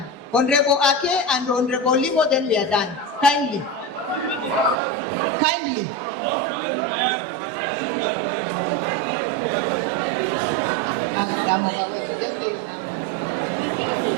Honorable Ake and Honorable Limo, then we are done. Kindly. Just say your name.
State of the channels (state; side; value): drops out; left; at 4.8 s